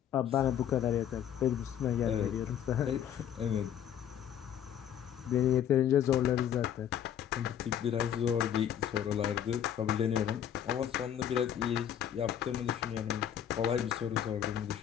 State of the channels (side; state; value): right; quieter; 9.8 dB